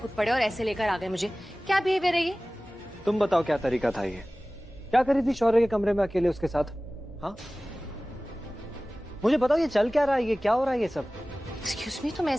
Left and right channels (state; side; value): normal; both; correlation 0.98